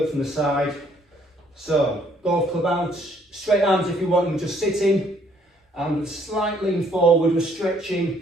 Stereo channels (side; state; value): both; normal; correlation 0.65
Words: it from the side. So golf club out, straight arms if you want, and just sitting and slight lean forward. We're stretching